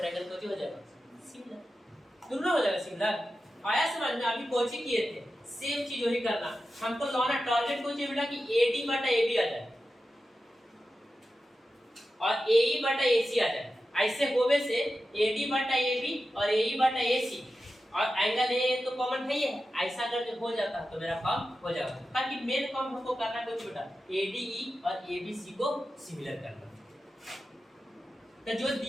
कुछ हो जाएगा सिमिलर, दोनों हो जाएगा सिमिलर। आया समझ में? अभी कोची किए थे सेम चीज वही करना, हमको लाना टारगेट को चाहिए बेटा कि एडी बटा एबी आ जाए और एई बटा एसी आ जाए। ऐसे होवे से एडी बटा एबी और एई बटा एसी और एंगल ए तो कॉमन है ही है, ऐसा अगर जो हो जाता तो मेरा काम हो जाएगा। ताकि मेन काम हमको करना कुछ बेटा एडीई और एबीसी को सिमिलर करना, तो जो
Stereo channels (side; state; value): both; normal; correlation 0.92